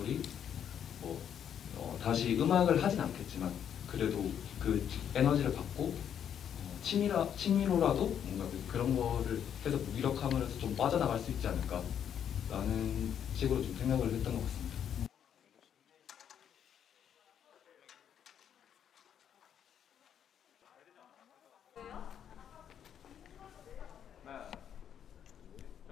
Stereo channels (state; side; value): quieter; right; 8.9 dB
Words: 다시 음악을 하진 않겠지만 그래도 그 에너지를 받고 취미로라도 뭔가 그런 거를 해서 무기력함을 해서 좀 빠져나갈 수 있지 않을까라는 식으로 좀 생각을 했던 것 같습니다. 하나,